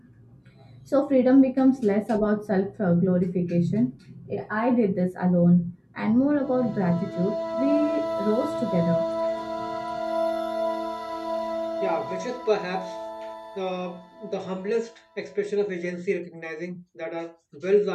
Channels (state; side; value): identical; both; correlation 1.00